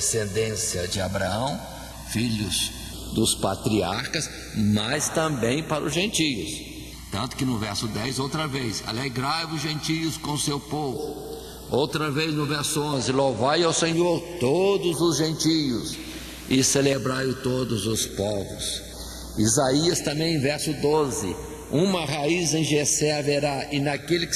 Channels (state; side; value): identical; both; correlation 1.00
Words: de Abraão, filhos dos patriarcas, mas também para os gentios. Tanto que no verso 10, outra vez, alegrai-vos gentios com seu povo. Outra vez no verso 11, louvai ao Senhor todos os gentios e celebrai-o todos os povos. Isaías também, verso 12, uma raiz em Jessé haverá, e naquele que